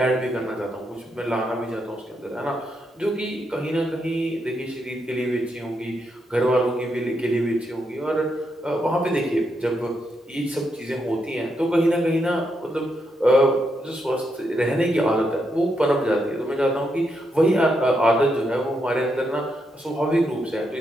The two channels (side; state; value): both; normal; correlation 0.81